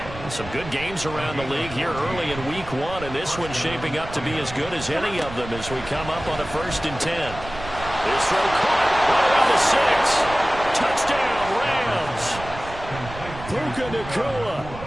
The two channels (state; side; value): noise; right; rumble, 13 dB below the sound